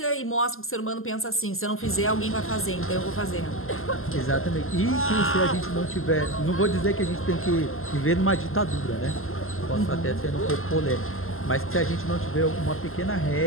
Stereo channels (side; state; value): right; late; 0.61 ms